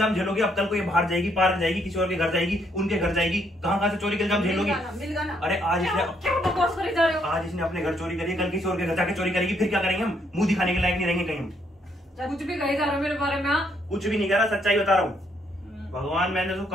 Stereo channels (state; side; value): normal; both; correlation 0.72